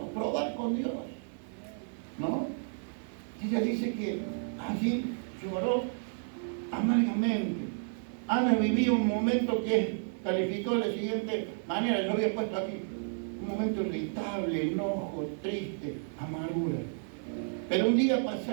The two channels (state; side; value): silent; left; 57 dB below the other